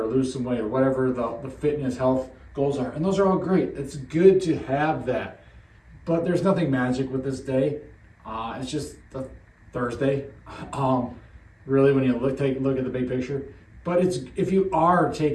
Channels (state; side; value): identical; both; correlation 1.00